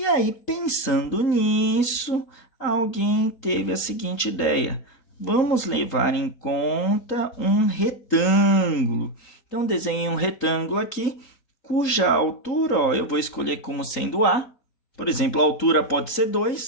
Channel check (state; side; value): late; right; 3.8 ms